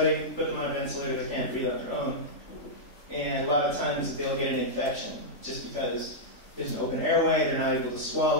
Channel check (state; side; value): late; right; 3.5 ms